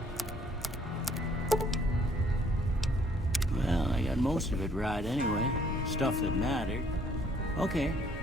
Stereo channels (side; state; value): both; normal; correlation 0.63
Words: Most of it right anyway. Stuff that mattered. Okay.